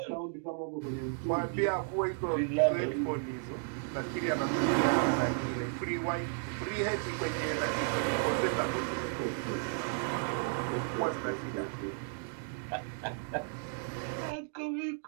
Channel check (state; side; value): silent; left; 55 dB below the other